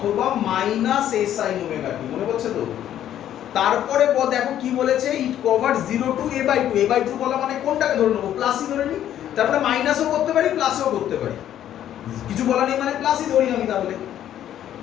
minus a sin omega t, মনে পড়ছে তো? তারপরে দেখো কি বলেছে, ইট কভার 0 টু a/2। a/2 বলা মানে কোনটাকে ধরে নেবো? প্লাসই ধরে নিই। তারপরে মাইনাসও করতে পারি, প্লাসও করতে পারি। কিছু বলা নেই মানে প্লাসই ধরি আমি।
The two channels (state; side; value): quieter; right; 11.2 dB